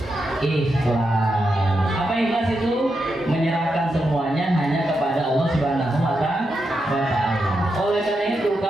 ikhlas. Apa ikhlas itu? Menyerahkan semuanya hanya kepada Allah Subhanahu wa taala. Oleh karena itu,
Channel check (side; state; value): both; normal; correlation 0.85